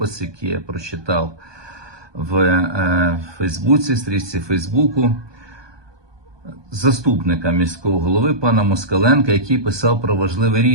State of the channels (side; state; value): left; late; 1.2 ms